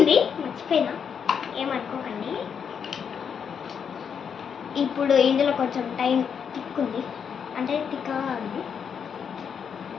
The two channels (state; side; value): quieter; right; 7.2 dB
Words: మర్చిపోయినా, ఏమనుకోకండి. ఇప్పుడు ఇందులో కొంచెం టైం తిక్కుంది, అంటే తిక్కగా ఉంది.